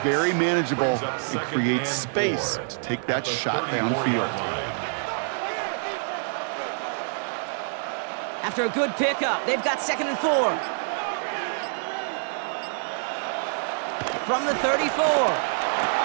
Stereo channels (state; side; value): silent; left; digital silence